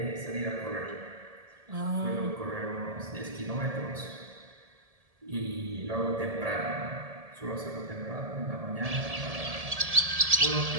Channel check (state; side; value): late; left; 1.7 ms